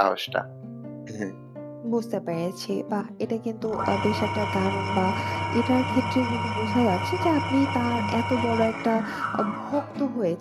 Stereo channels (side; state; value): both; identical; correlation 1.00